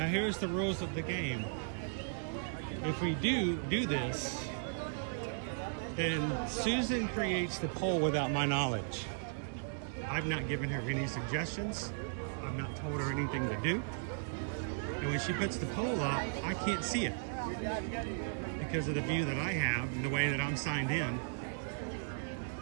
here's the rules of the game. If we do this, then Susan creates the poll without my knowledge. I've not given her any suggestions. I've not told her anything to do. And when she puts the poll up, I can't see it because of the view that I have and the way that I'm signed in.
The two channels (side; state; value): left; silent; digital silence